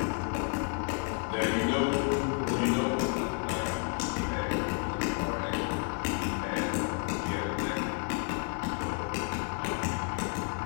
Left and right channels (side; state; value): right; quieter; 38.4 dB